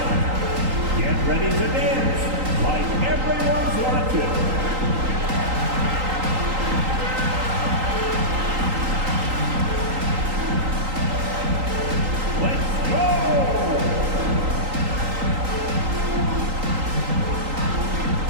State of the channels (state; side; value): late; left; 3.8 ms